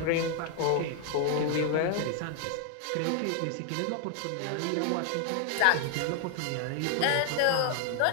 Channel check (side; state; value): both; different; correlation 0.00